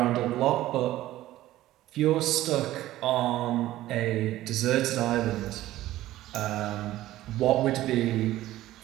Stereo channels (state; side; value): quieter; left; 15.2 dB